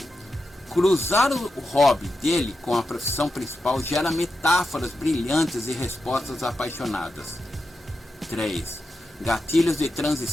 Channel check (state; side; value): normal; both; correlation 0.89